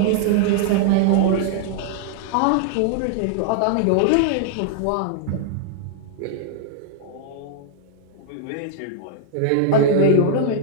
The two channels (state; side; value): different; both; correlation -0.01